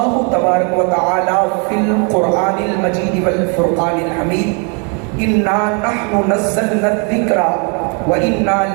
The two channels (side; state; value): left; quieter; 36.2 dB